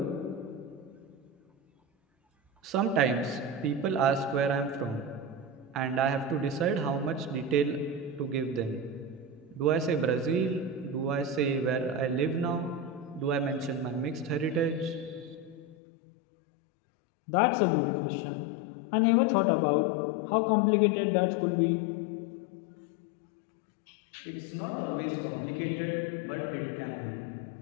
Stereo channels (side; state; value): right; drops out; at 15.8 s